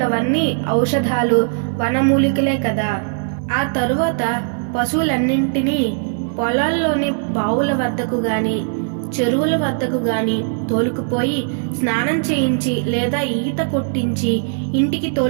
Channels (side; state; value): left; silent; 57 dB below the other